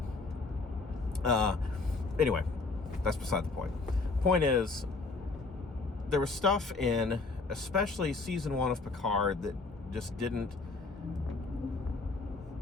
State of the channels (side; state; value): right; quieter; 3.8 dB